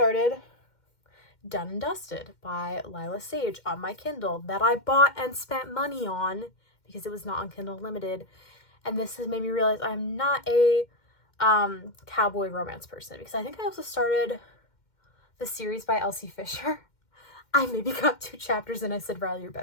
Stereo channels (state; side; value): late; right; 2.1 ms